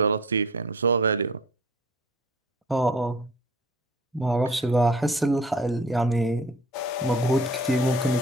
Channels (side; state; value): both; normal; correlation 0.47